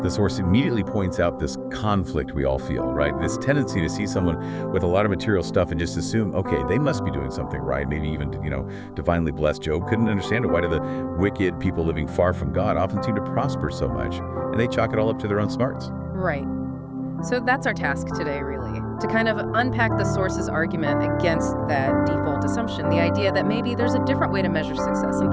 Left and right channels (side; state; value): both; identical; correlation 1.00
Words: source immediately points out this conflict we all feel, right? This tendency to see someone with a lot of material stuff and just assume, okay, they must be doing something right. Maybe even, divinely blessed. Job couldn't understand it. Why do the wicked people living far from God often seem to prosper so much? And they chalk it all up to their own smarts. Right. So that's our task today, really, to kind of unpack the source's argument against that default assumption, the idea that maybe there's a different way to measure success,